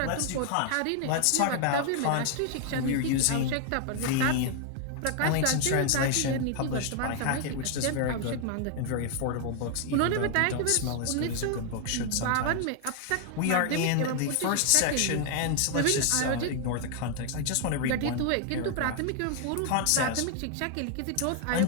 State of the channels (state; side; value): different; both; correlation 0.00